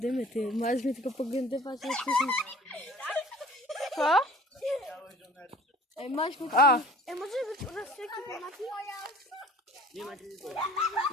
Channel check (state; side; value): normal; both; correlation 0.49